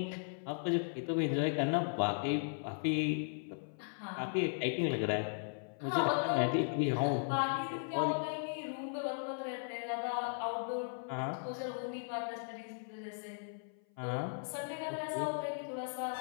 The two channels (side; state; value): right; silent; 53 dB below the other